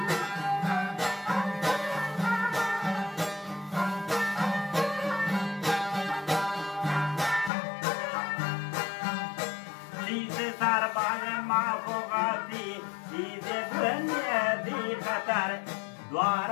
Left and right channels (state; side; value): drops out; right; at 7.5 s